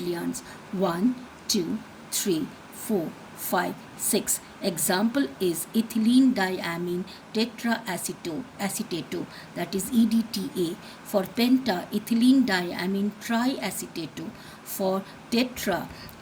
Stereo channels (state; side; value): identical; both; correlation 1.00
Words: 1, 2, 3, 4, 5, 6. Example is ethylene diamine tetraacetate, that is EDTA. For penta, ethylene diamine triacetate. For tetra,